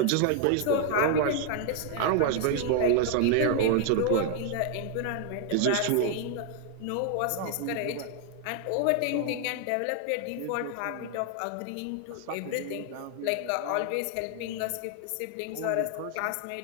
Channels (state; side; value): different; both; correlation 0.00